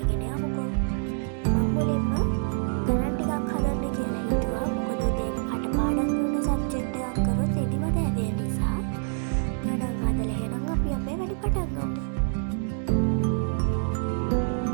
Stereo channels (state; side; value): silent; left; digital silence